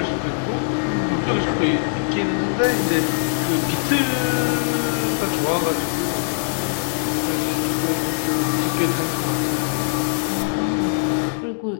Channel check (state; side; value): silent; right; digital silence